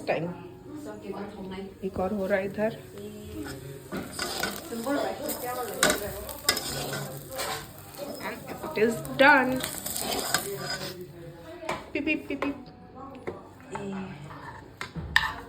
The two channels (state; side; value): identical; both; correlation 1.00